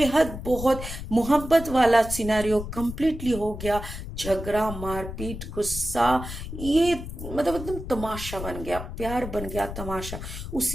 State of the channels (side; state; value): left; noise; rumble, 8 dB below the sound